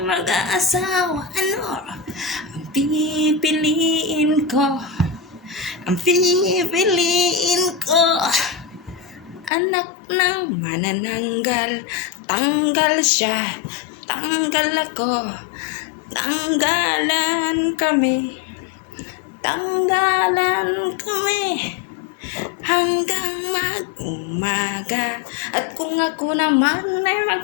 mag-aasawa, ano ang pipiliin ko? Ang pipiliin ko, anak ng manananggal. Tanggal siya, tanggal ako, tanggalan kami, tanggalan kami, hanggang mag-umaga. At kung ako naman ay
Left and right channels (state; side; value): drops out; right; at 9.5 s